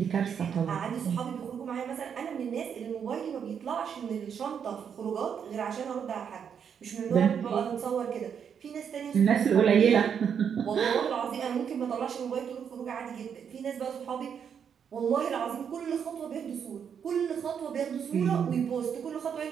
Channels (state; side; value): quieter; left; 7.6 dB